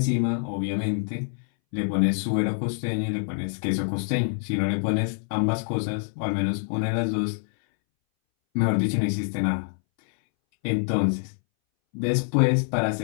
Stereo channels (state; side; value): silent; right; 61 dB below the other